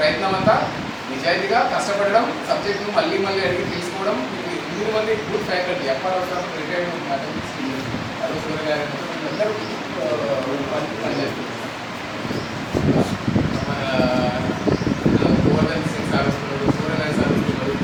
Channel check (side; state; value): both; identical; correlation 1.00